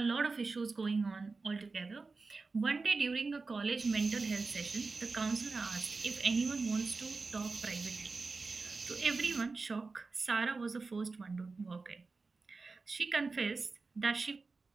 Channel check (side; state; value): left; quieter; 4.0 dB